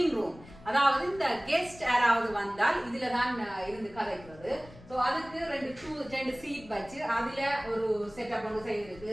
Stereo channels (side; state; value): left; noise; rumble, 20 dB below the sound